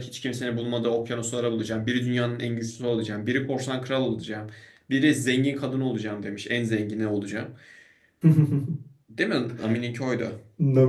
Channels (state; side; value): identical; both; correlation 1.00